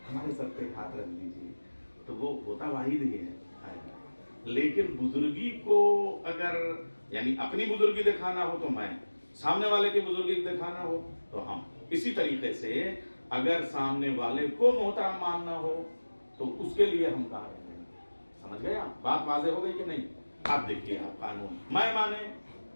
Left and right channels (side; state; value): both; inverted; correlation -1.00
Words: ہمارے سر پہ ہاتھ رکھ دیجیے، تو وہ ہوتا واحد ہی ہے۔ لیکن بزرگی کو اگر یعنی اپنی بزرگی دکھانا ہو تو میں، سامنے والے کی بزرگی دکھانا ہو تو ہم، اسی طریقے سے اگر سامنے والے کو محترم ماننا ہو تو اس کے لیے ہم کہا رہے ہیں۔ سمجھ گئے آپ؟ بات واضح ہو گئی کہ نہیں؟ آپ دیکھیے، آپ قانون، میں مانے